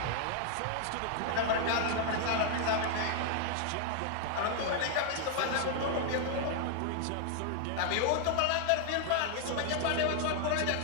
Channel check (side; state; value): both; different; correlation 0.00